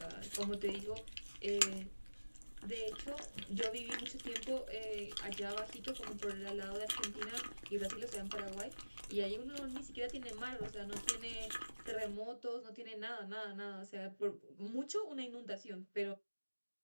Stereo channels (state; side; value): inverted; both; correlation -1.00